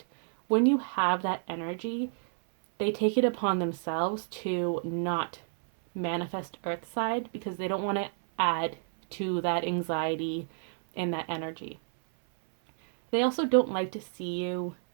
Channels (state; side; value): silent; left; 58 dB below the other